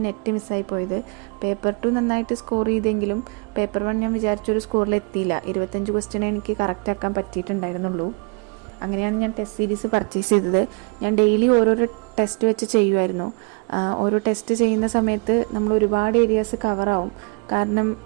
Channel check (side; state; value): left; quieter; 33.4 dB